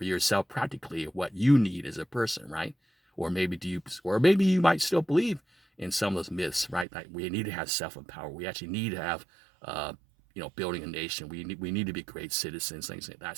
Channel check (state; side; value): drops out; left; at 6.9 s